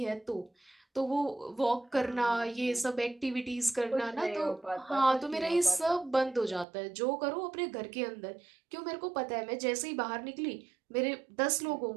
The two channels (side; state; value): left; drops out; at 6.7 s